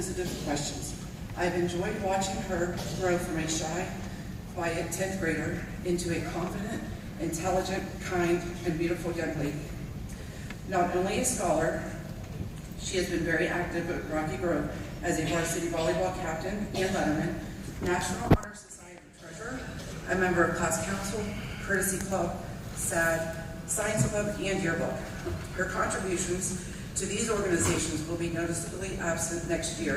questions. I've enjoyed watching her grow from a shy, quiet 10th grader into a confident, intelligent, kind, and beautiful young lady. Not only a scholar, she has been very active at Rocky Grove as a varsity volleyball captain and letterman, National Honor Society treasurer, a member of class council, courtesy club, SAD, science club, and yearbook. Her contributions to these organizations will be noticeably absent next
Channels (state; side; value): identical; both; correlation 1.00